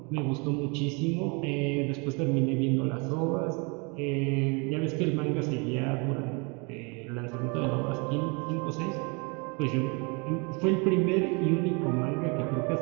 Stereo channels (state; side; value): quieter; left; 31.5 dB